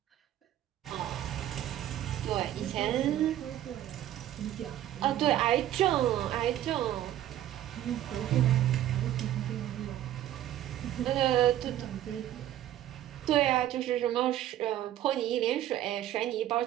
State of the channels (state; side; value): quieter; left; 12.5 dB